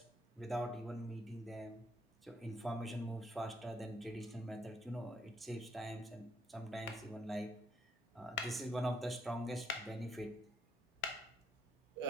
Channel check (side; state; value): both; normal; correlation 0.72